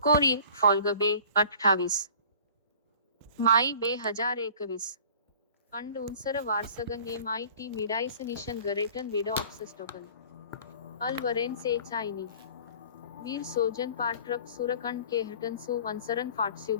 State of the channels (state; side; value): inverted; both; correlation -0.47